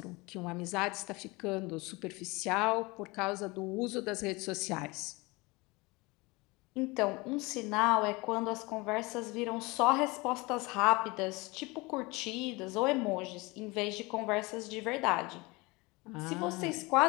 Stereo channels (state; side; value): quieter; right; 24.5 dB